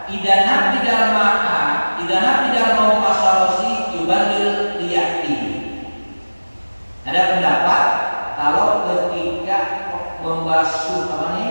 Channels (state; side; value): inverted; both; correlation -1.00